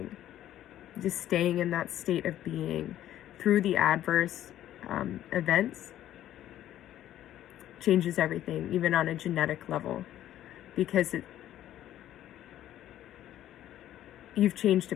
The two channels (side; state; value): right; quieter; 12.4 dB